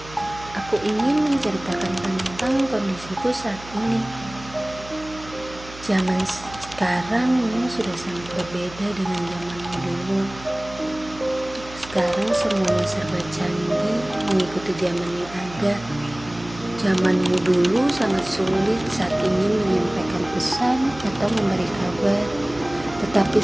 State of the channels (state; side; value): noise; right; hum, 17 dB below the sound